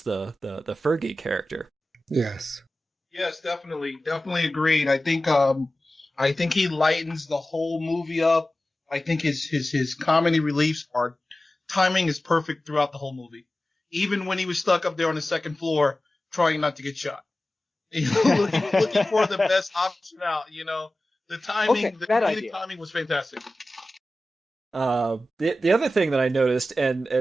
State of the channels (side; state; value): both; normal; correlation 0.95